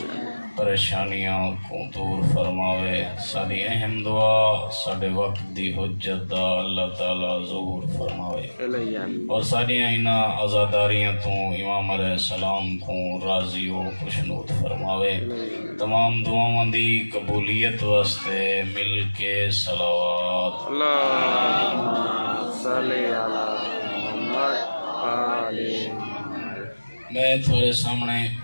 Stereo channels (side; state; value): both; inverted; correlation -1.00